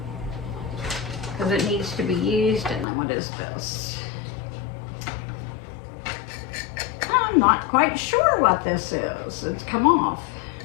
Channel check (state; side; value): drops out; right; at 2.9 s